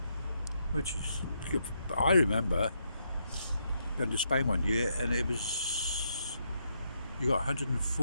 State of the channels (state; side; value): inverted; both; correlation -0.79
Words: which is, I remember going to Spain one year, and it was, you got